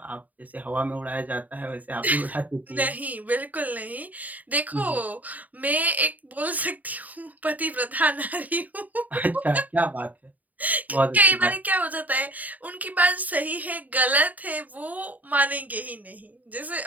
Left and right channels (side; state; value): left; late; 0.077 ms